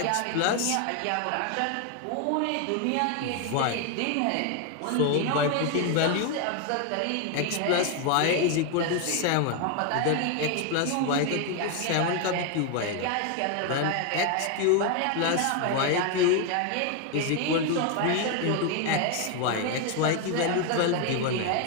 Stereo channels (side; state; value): both; different; correlation 0.01